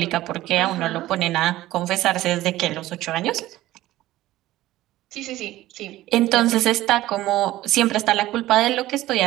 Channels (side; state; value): left; quieter; 15.8 dB